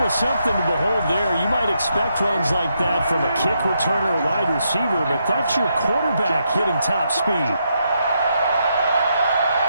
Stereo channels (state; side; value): inverted; both; correlation -0.80